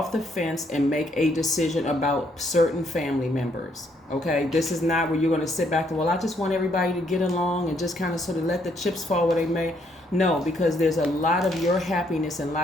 the fence and make a decision about certain family members. Okay, this is not where you're going to sit back and, well, I just want everybody to get along and just kind of sort of let the chips fall where they may. No, because there's a lot of your happiness and a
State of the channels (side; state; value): both; normal; correlation 0.71